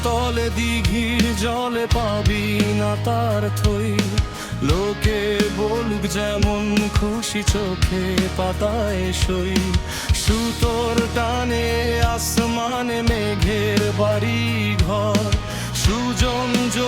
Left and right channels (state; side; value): identical; both; correlation 1.00